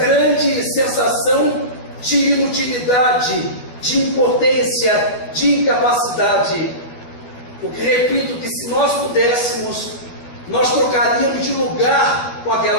sensação de inutilidade, de impotência, de incapacidade. Porque, repito, que se nós pudéssemos, nós trocaríamos de lugar com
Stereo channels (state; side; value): late; right; 12 ms